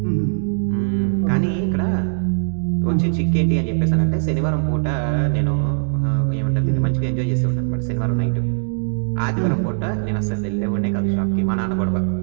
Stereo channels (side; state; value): left; silent; digital silence